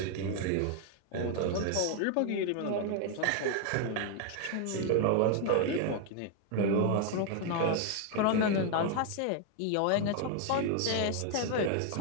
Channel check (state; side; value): different; both; correlation 0.00